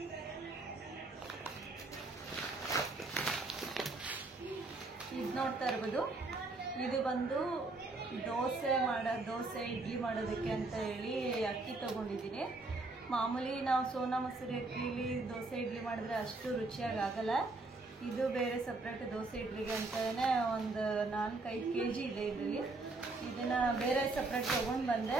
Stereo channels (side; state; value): left; quieter; 3.3 dB